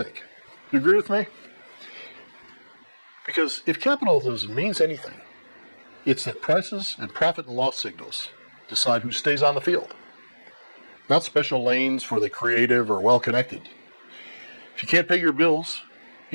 Do you agree with me? Because if capitalism means anything, it's that prices and profit and loss signals decide who stays on the field. Not special lanes for the creative or well-connected. If you can't pay your bills,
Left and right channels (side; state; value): both; inverted; correlation -1.00